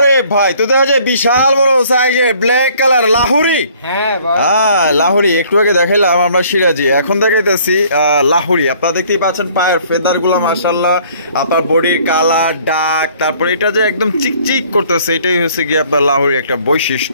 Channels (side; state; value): both; inverted; correlation -0.58